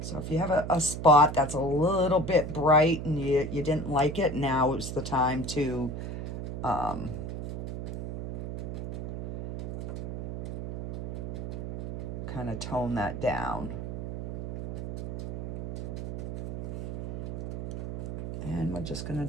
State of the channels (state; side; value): noise; right; hum, 6 dB below the sound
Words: So if you have a spot that's a little bit bright and you didn't like it, now is the time to kind of tone that down. And we're just going to